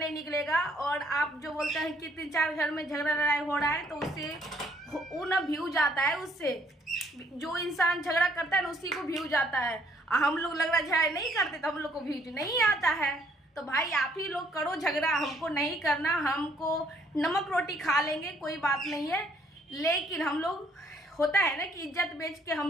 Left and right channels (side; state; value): both; normal; correlation 0.65